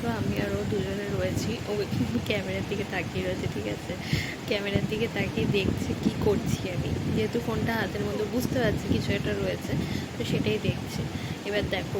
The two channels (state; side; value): identical; both; correlation 1.00